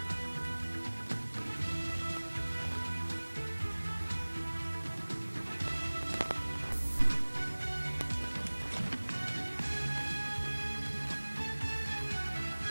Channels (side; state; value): both; inverted; correlation -1.00